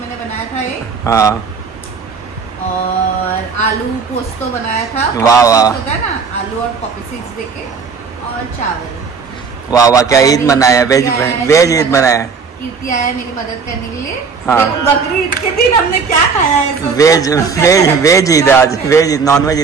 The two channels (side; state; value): left; quieter; 5.3 dB